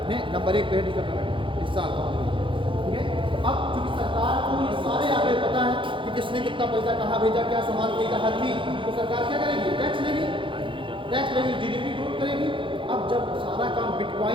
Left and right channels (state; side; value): late; left; 0.25 ms